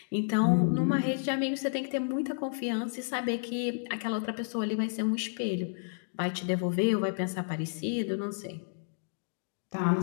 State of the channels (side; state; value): right; silent; digital silence